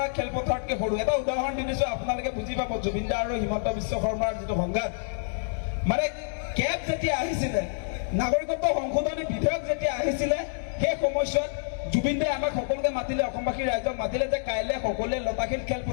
খেলপথাৰতকৈ সৰু। এটা উদাহৰণ দি দিছো, আপোনালোকে বুজি পাব জুবিন দা আৰু হিমন্ত বিশ্ব শৰ্মাৰ যিটো সংঘাত। মানে কেব যেতিয়া আহিছিলে, নাগৰিকত্ব সংশোধনী বিধেয়ক যেতিয়া আহিছিলে, সেই সময়ছোৱাত জুবিন দাই আমাক সকলোকে মাতিলে, অসমবাসী ৰাইজক মাতিলে যে কাইলৈ সকলোৱে লতাশিল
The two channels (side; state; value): right; silent; digital silence